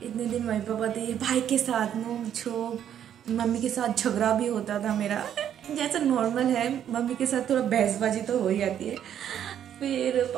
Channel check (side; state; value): left; quieter; 9.8 dB